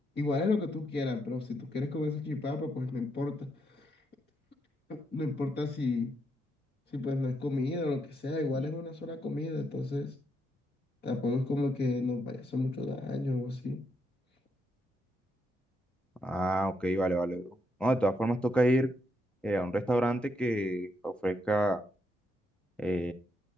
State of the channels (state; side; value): normal; both; correlation 0.79